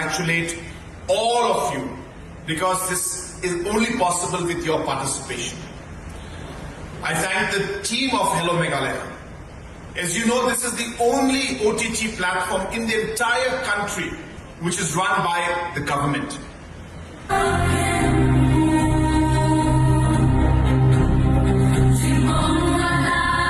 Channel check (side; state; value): both; identical; correlation 1.00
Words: all of you, because this is only possible with your participation. I thank the team of Hello Meghalaya. As you know, this is the only OTT platform in the entire country which is run by the government.